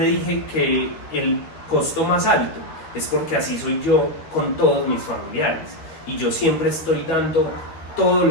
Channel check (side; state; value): right; late; 13 ms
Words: que el costo más alto es porque así soy yo con todos mis familiares y yo siempre estoy dando todo